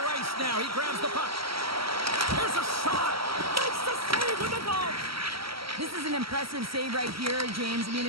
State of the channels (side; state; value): left; late; 0.75 ms